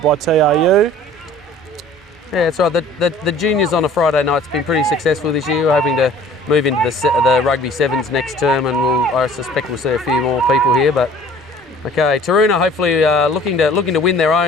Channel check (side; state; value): both; normal; correlation 0.50